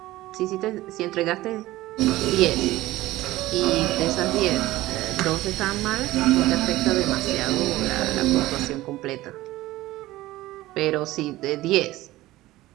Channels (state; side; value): quieter; left; 17.1 dB